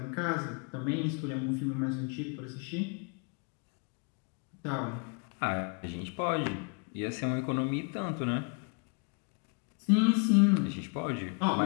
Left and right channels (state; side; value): quieter; right; 35.8 dB